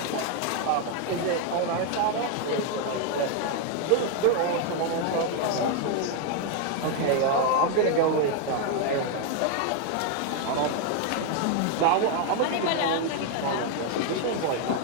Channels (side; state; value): both; different; correlation 0.01